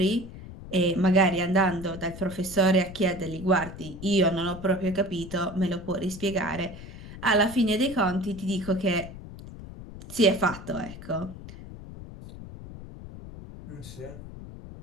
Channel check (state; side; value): noise; left; rumble, 14 dB below the sound